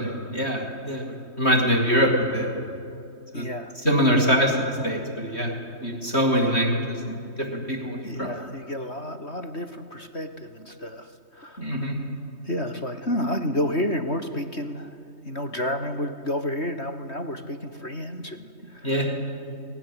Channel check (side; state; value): right; late; 3.2 ms